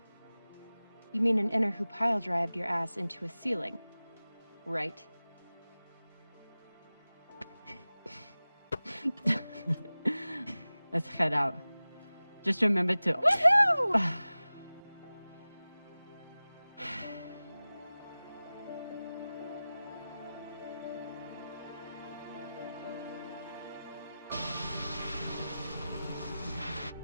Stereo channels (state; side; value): inverted; both; correlation -0.97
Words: You mean an inner who pile-drived your ass into a ceiling, right? Let's head out. Just remember to... Woohoo!